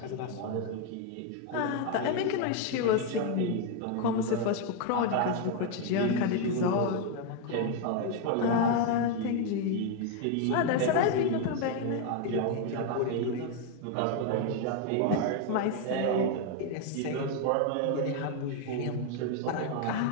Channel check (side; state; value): both; different; correlation 0.01